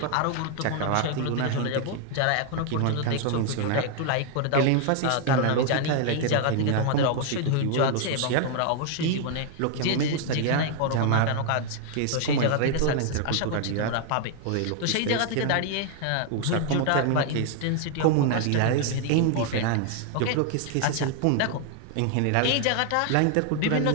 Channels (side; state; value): both; different; correlation 0.00